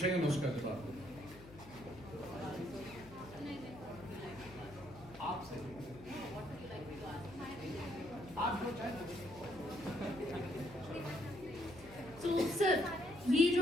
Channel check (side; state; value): left; noise; hum, 18 dB below the sound